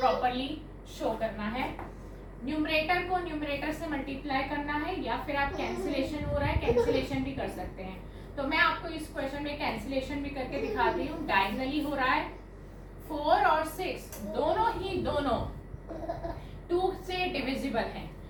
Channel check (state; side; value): identical; both; correlation 1.00